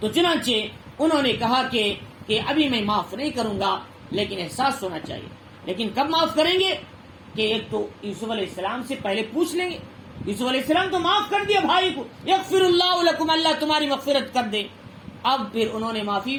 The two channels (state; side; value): identical; both; correlation 1.00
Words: چنانچہ انہوں نے کہا کہ ابھی میں معاف نہیں کروں گا، لیکن احساس ہونا چاہیے۔ لیکن کب معاف کریں گے کہ ایک تو یوسف علیہ السلام سے پہلے پوچھ لیں گے، یوسف علیہ السلام تو معاف کر دیا بھائی کو، یغفر اللہ لکم، اللہ تمہاری مغفرت کر دے۔ اب پھر انہوں نے معافی